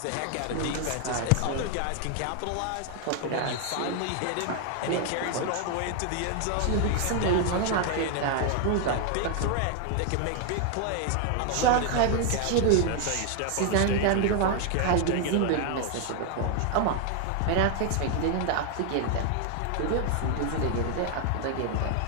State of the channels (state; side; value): different; both; correlation 0.00